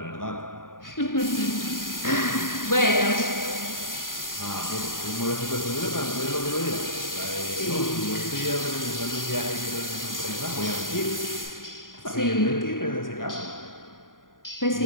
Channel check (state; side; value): late; right; 0.90 ms